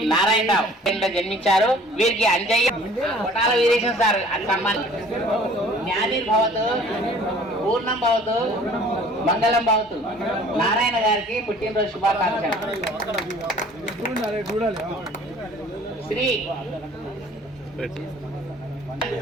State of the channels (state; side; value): normal; both; correlation 0.51